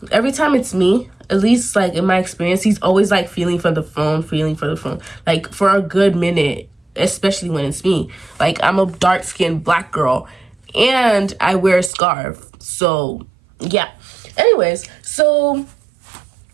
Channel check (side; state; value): left; drops out; at 11.9 s